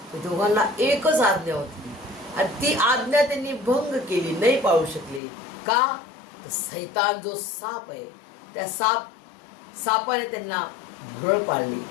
एकच आज्ञा होती. आणि ती आज्ञा त्यांनी भंग केली, नाही पाळू शकली. का? तर सैतान जो साप आहे, त्या सापाने त्यांना भुरळ पाडली,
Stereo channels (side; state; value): right; drops out; at 5.2 s